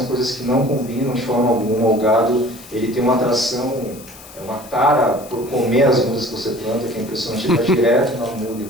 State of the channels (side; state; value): left; noise; hiss, 19 dB below the sound